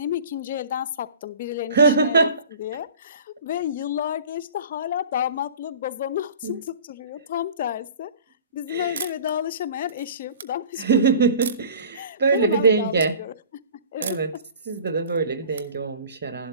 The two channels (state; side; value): inverted; both; correlation -0.43